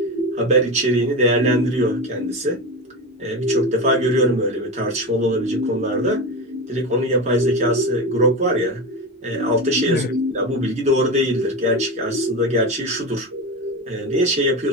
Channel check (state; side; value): normal; both; correlation 0.22